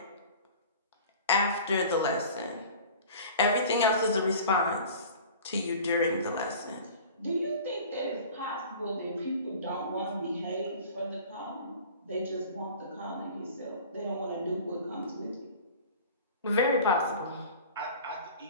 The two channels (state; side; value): inverted; both; correlation -0.42